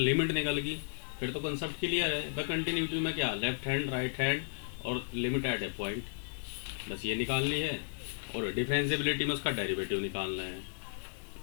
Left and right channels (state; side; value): silent; right; 55 dB below the other